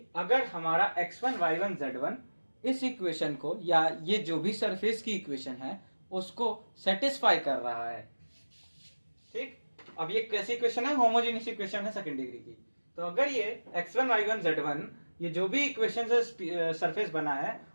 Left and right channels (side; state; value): both; inverted; correlation -1.00